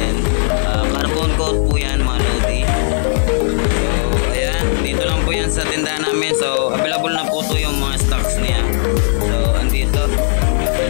carbon coat po yan mga Lodi. Dito lang po yan sa tindahan namin. So available na po to yung mga stocks niya. So andito,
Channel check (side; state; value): right; silent; 57 dB below the other